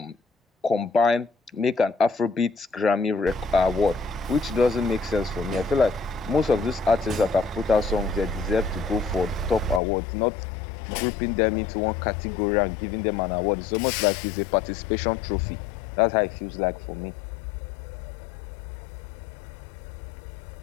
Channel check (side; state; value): right; drops out; at 9.8 s